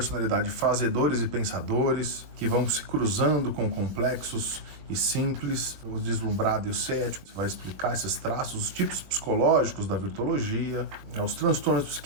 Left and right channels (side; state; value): left; late; 21 ms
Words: fazedores e pensadores, que vão se cruzando com complexos e simples, o deslumbrado e o cético, vai explicar esses traços, os tipos psicológicos da virtologia, os transtornos